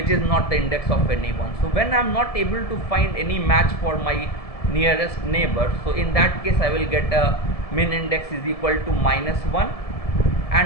is not the index of anyone. So when I am not able to find any match for my nearest neighbor, so in that case I will get a min index is equal to -1,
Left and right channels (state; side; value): late; right; 1.7 ms